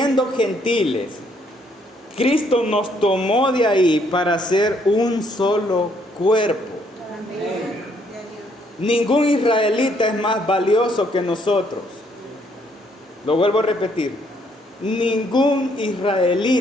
gentiles, Cristo nos tomó de ahí para ser un solo cuerpo. Amén. Ningún israelita es más valioso que nosotros. Lo vuelvo a repetir. Ningún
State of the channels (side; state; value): both; normal; correlation 0.69